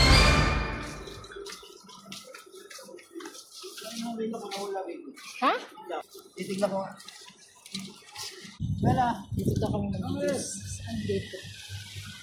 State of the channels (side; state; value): both; identical; correlation 1.00